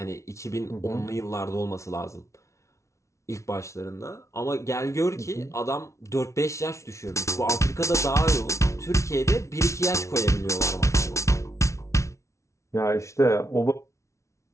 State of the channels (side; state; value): right; late; 0.14 ms